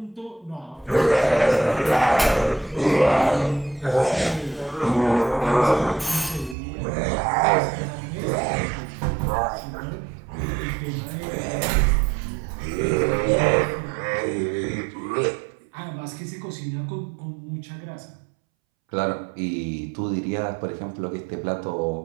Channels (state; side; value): drops out; left; at 6.6 s